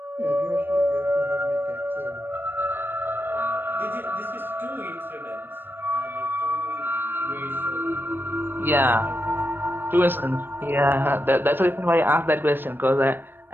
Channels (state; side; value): late; left; 0.097 ms